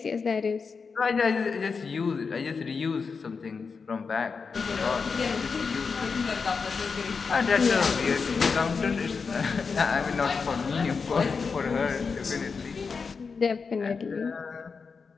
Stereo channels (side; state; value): right; quieter; 5.2 dB